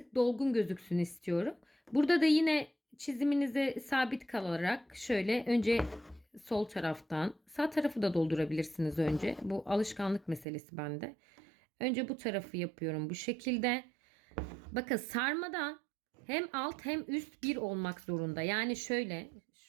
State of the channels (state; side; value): drops out; left; at 10.5 s